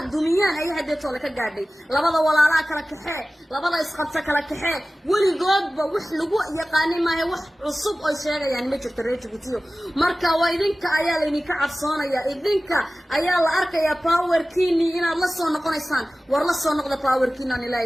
dumiyaan ay hadda toole ka gaadhay labada walaalaha kala kaxee labada isqabta kala kaxee weligoodba wax lagu yaqaanay maahay wax cusub oo sheegayaan ma jirto reer Djibouti marka waa idinka ayaa la idinka cabsoonaya idinka ayaa la arkaya powerkiini inaad la soo noqonaysaan war la soo noqda powerkiina aan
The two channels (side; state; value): both; normal; correlation 0.96